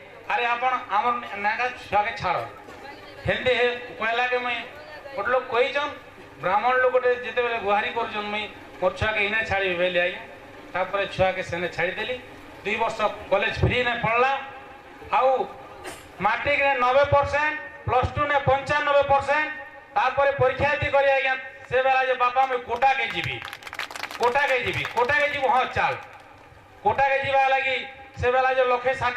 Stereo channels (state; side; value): identical; both; correlation 1.00